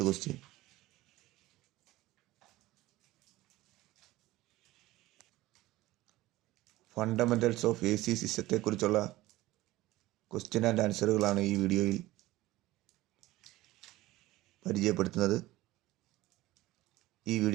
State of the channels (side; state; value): left; quieter; 17.7 dB